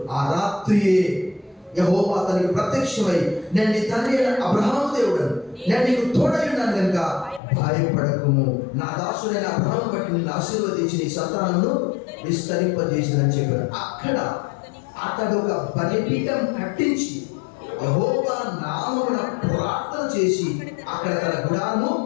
ఆ రాత్రియే యెహోవా అతనికి ప్రత్యక్షమై, నేను నీ తండ్రి అయిన అబ్రహాము దేవుడను, నేను నీకు తోడై ఉన్నాను కనుక భయపడకుము, నా దాసుడైన అబ్రహామును బట్టి నిన్ను ఆశీర్వదించి నీ సంతానమును విస్తరింపజేసిందని చెప్పాడు. అక్కడ అతడు ఒక బలిపీఠం కట్టించి యెహోవా నామమున ప్రార్థన చేసి అక్కడ తన గుడారము.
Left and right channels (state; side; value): drops out; right; at 7.4 s